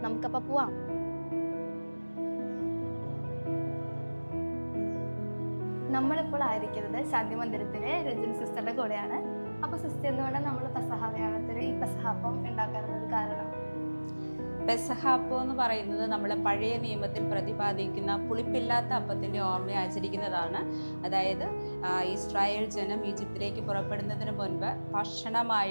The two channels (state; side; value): inverted; both; correlation -1.00